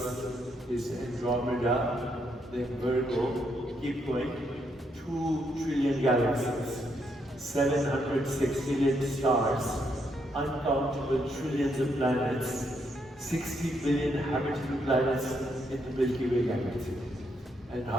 is Andromeda, then Virgo. Keep going. 2 trillion galaxies, 700 sextillion stars, uncountable trillions of planets, 60 billion habitable planets in the Milky Way galaxy. And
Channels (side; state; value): both; normal; correlation 0.76